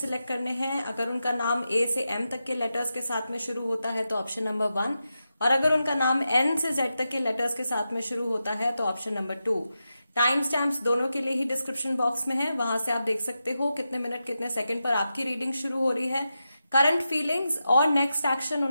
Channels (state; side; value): inverted; both; correlation -0.89